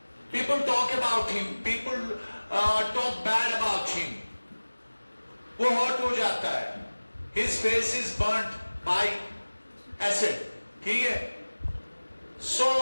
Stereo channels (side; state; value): both; inverted; correlation -1.00